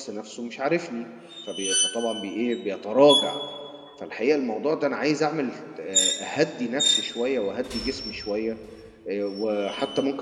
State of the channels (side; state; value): both; identical; correlation 1.00